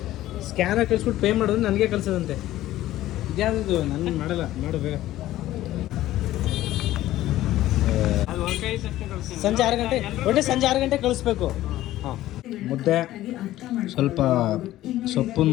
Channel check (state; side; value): quieter; right; 14.8 dB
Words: ಸ್ಕ್ಯಾನರ್ ಕಳಿಸ್ಬಿಟ್ಟು ಪೇ ಮಾಡೋದು ನನಗೆ ಕಳಿಸೋದಂತೆ. ಇದ್ಯಾವುದು ನಾನು ಮಾಡಲ್ಲ. ಮಾಡು ಬೇಗ. ಸಂಜೆ 6 ಗಂಟೆ, ಒಟ್ಟೆ ಸಂಜೆ 6 ಗಂಟೆ ಕಳಿಸ್ಬೇಕು. ಹಾಂ, ಮುದ್ದೆ, ಸ್ವಲ್ಪ ಸೊಪ್ಪು